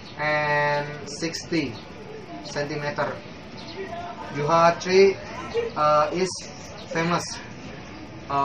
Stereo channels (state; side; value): identical; both; correlation 1.00